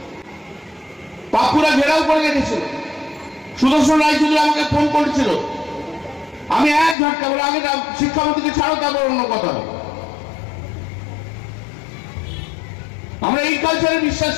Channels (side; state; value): right; drops out; at 7.0 s